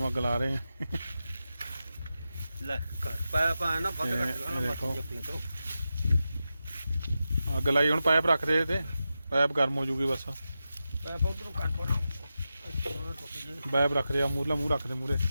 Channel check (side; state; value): both; inverted; correlation -0.91